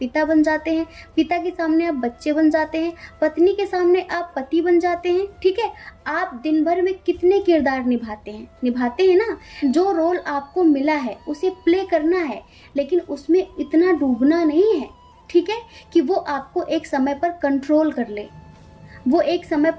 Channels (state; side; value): identical; both; correlation 1.00